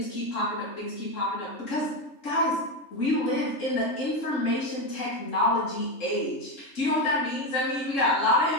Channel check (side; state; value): right; late; 3.7 ms